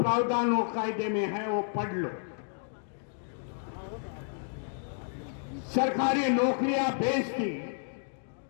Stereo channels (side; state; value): right; silent; digital silence